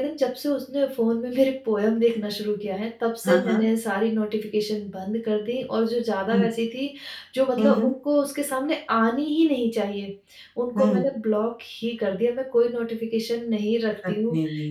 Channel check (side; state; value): both; identical; correlation 1.00